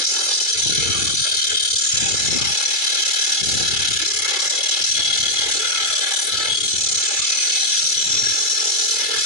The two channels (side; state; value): right; late; 2.3 ms